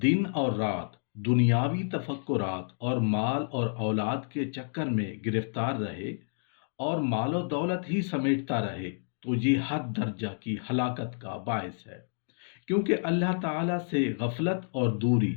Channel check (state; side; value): silent; right; digital silence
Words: دن اور رات دنیاوی تفکرات اور مال اور اولاد کے چکر میں گرفتار رہے اور مال و دولت ہی سمیٹتا رہے تو یہ حد درجہ کی ہلاکت کا باعث ہے، کیونکہ اللہ تعالیٰ سے غفلت اور دوری